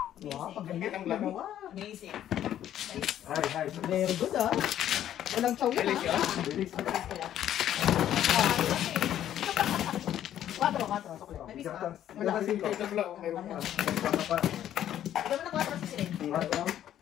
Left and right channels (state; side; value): quieter; right; 11.3 dB